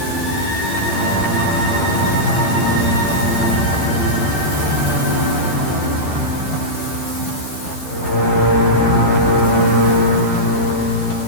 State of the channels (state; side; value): late; right; 12 ms